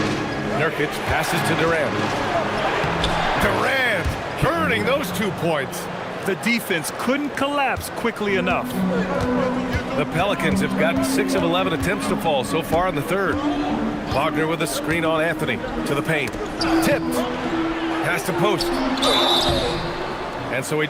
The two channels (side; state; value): both; identical; correlation 1.00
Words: Nurkic passes to Durant. Durant earning those 2 points. The defense couldn't collapse quickly enough. The Pelicans have gotten 6 of 11 attempts to fall so far in the third. Wagner with a screen on Anthony to the paint. Tipped. Pass to post. And so he